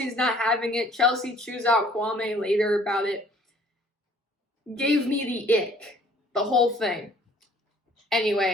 not having it. Chelsea chews out Kwame later about it. Gave me the ick. The whole thing.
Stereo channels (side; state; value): both; normal; correlation 0.56